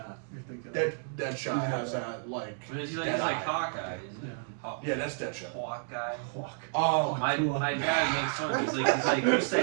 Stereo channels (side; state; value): left; silent; digital silence